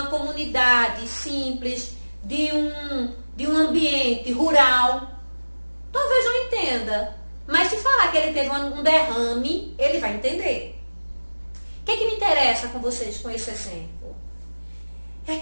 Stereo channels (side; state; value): both; inverted; correlation -1.00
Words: comunidade simples, de um ambiente rural, talvez não entenda. Mas se falar que ele teve um derrame, ele vai entender. O que me interessa com vocês com esse exemplo? É